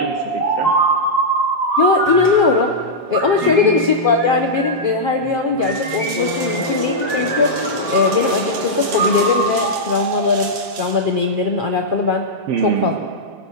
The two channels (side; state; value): left; late; 7.5 ms